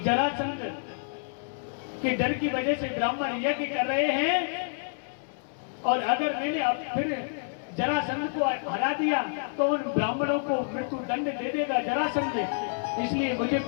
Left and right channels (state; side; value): silent; right; 59 dB below the other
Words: के डर की वजह से ब्राह्मण यज्ञ कर रहे हैं और अगर मैंने अब फिर जरासंध को हरा दिया तो उन ब्राह्मणों को मृत्यु दंड दे देगा जरासंध, इसलिए मुझे